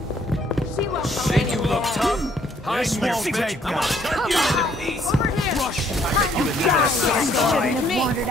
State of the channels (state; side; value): normal; both; correlation 0.65